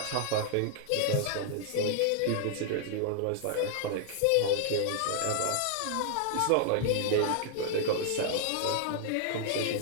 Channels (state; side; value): different; both; correlation -0.01